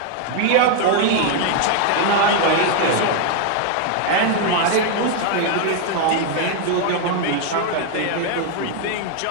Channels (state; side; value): different; both; correlation 0.00